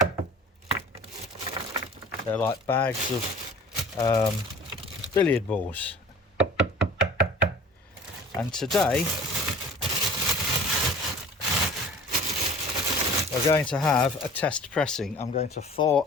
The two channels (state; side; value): normal; both; correlation 0.45